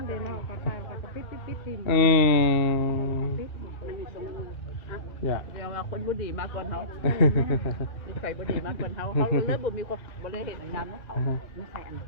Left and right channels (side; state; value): right; late; 2.3 ms